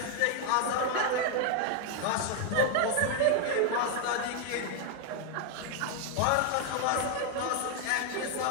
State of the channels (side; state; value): both; different; correlation 0.00